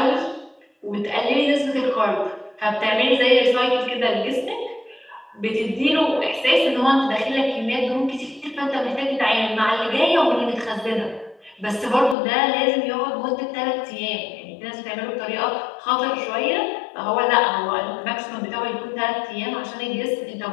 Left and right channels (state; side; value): drops out; right; at 12.2 s